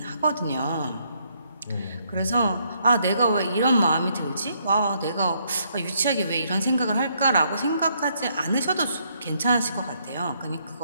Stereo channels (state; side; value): inverted; both; correlation -0.72